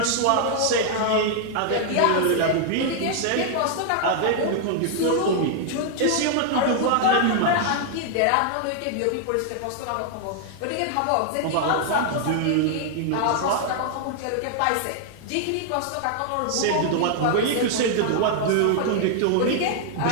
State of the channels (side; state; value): both; different; correlation 0.00